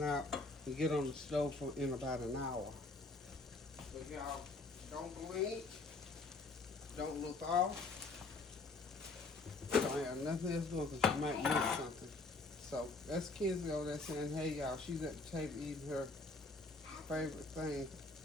out and get on the stove for in about an hour. But y'all, don't blink, don't look off. Don't have nothing else going because you might miss something. So that's Kenzie over there saying, hey y'all, she's at the table eating her favorite thing,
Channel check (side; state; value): right; quieter; 3.5 dB